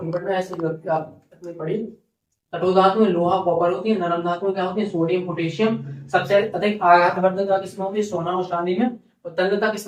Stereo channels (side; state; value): both; identical; correlation 1.00